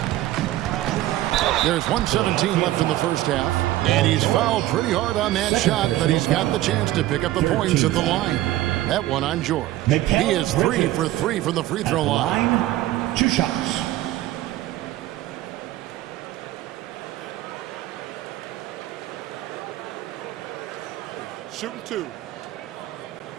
There's 1:17 left in the first half. And he's fouled pretty hard on that shot, but he's got the chance to pick up the points at the line. That one on George. He is 3 for 3 from the free throw line. 2 shots. Shooting 2.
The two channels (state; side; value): quieter; left; 15.3 dB